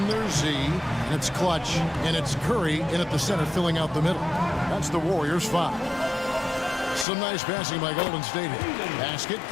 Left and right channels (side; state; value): right; drops out; at 7.1 s